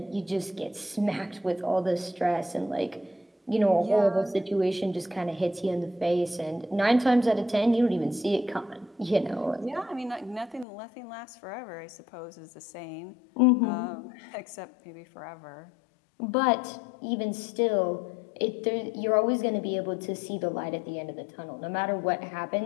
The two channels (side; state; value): right; drops out; at 10.7 s